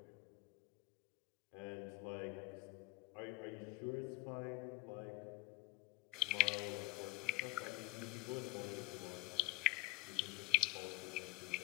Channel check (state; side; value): quieter; right; 21.1 dB